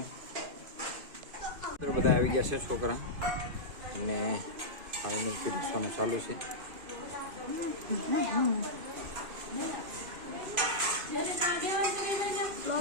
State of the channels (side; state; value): left; late; 2.5 ms